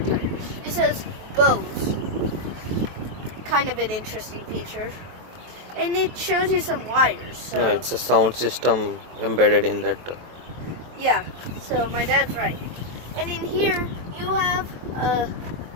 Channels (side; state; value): left; late; 23 ms